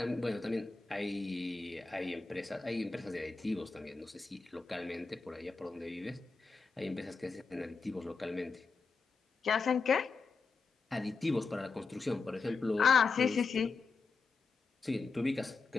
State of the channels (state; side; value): quieter; right; 4.5 dB